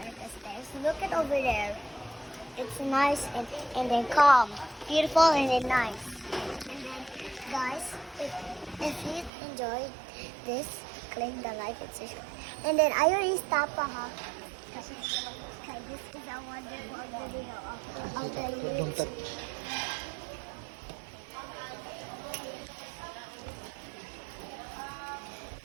at the stairs. Look at over there. It's nice and then calm. Beautiful and then nice. And then guys, if you enjoyed this, click the like and subscribe. And then I already stopped ha. Okay, this is a wonderful video of the YouTube.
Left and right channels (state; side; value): drops out; left; at 9.3 s